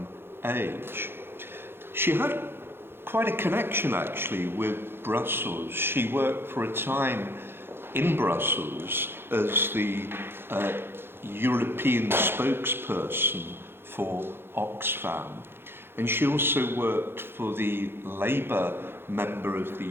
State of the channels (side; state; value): left; late; 0.11 ms